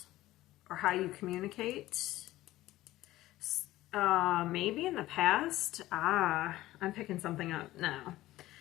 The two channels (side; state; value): right; quieter; 16.2 dB